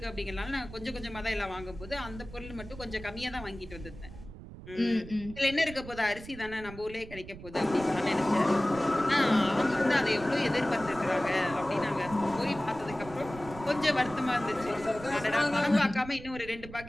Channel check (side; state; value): right; noise; rumble, 14 dB below the sound